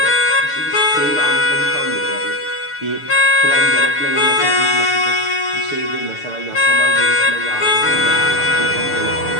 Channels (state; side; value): late; right; 6.8 ms